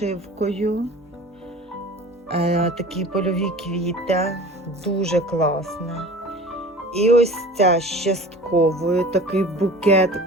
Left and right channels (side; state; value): both; normal; correlation 0.40